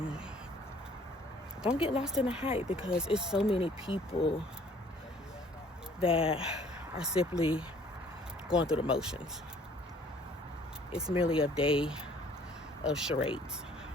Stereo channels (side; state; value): both; normal; correlation 0.57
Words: Don't get lost in the hype, because it's so many people that are simply going through the motions. It's merely a day of charades,